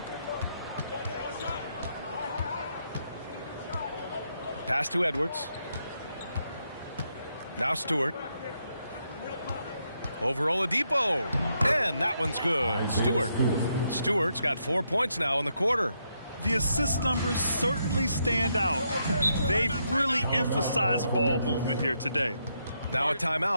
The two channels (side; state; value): both; inverted; correlation -0.79